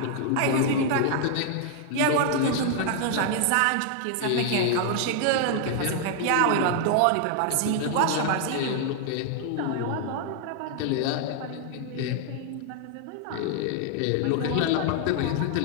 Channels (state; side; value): different; both; correlation 0.00